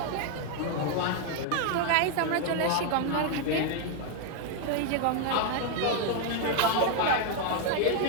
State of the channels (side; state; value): both; different; correlation 0.00